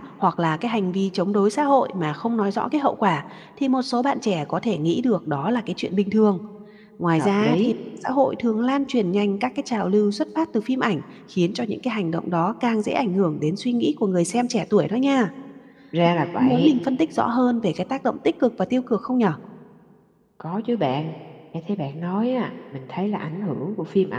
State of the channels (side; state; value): both; identical; correlation 1.00